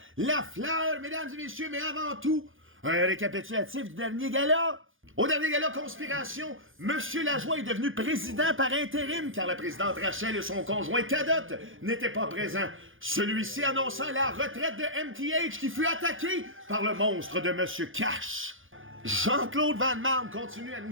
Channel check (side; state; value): left; late; 0.58 ms